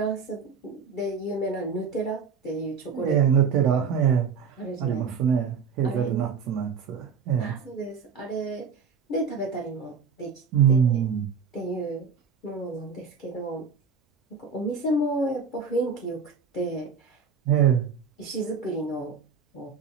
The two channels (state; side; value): quieter; left; 5.9 dB